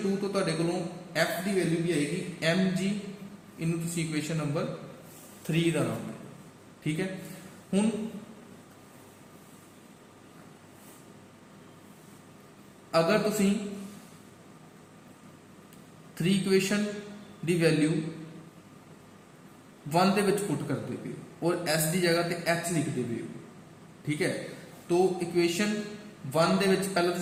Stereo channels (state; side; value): identical; both; correlation 1.00